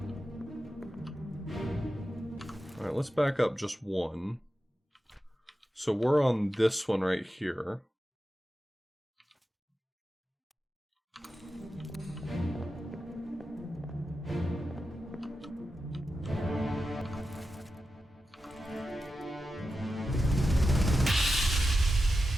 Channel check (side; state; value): both; normal; correlation 0.91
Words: Alright, let's back up just one. So we're on this one right here.